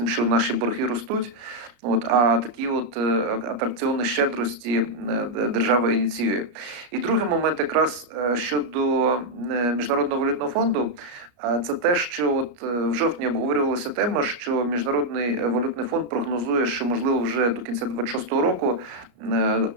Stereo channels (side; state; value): left; late; 34 ms